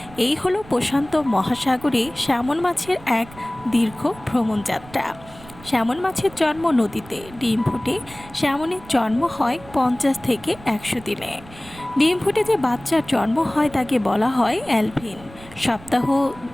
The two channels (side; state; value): right; noise; rumble, 20 dB below the sound